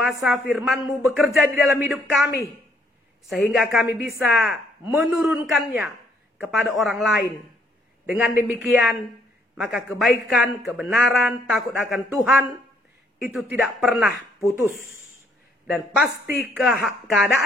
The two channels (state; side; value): normal; both; correlation 0.68